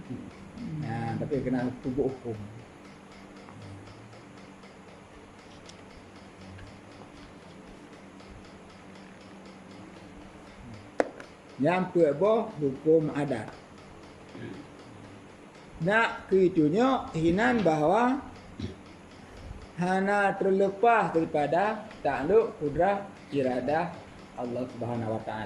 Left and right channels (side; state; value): both; identical; correlation 1.00